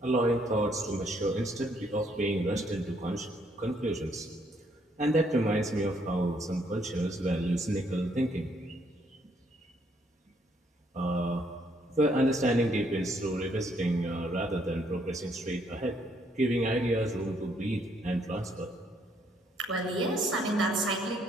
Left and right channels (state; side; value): normal; both; correlation 0.69